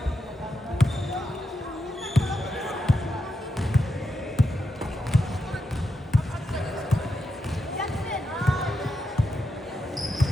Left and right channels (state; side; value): normal; both; correlation 0.86